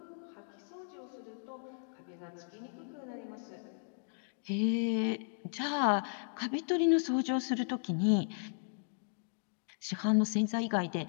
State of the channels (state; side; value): silent; right; digital silence